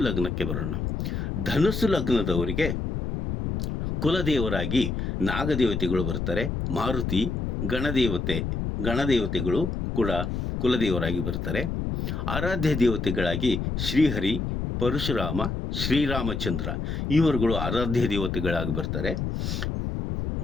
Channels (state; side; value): noise; left; rumble, 2 dB below the sound